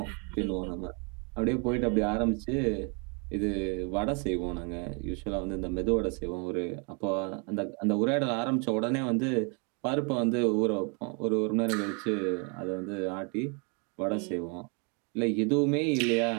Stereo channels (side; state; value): left; quieter; 35.6 dB